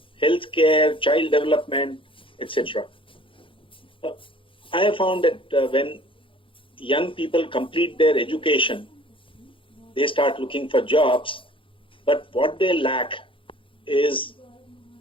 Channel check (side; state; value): right; late; 0.25 ms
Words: healthcare, child development, etc. I have found that when young people complete their education, they start looking for jobs, but what they lack is